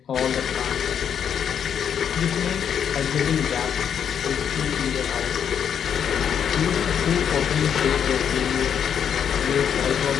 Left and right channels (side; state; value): right; quieter; 8.3 dB